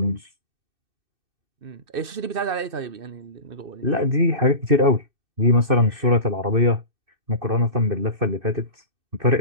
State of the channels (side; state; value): left; late; 2.6 ms